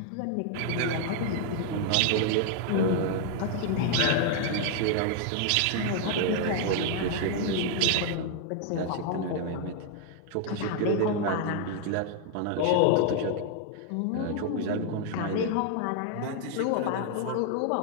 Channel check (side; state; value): both; different; correlation 0.00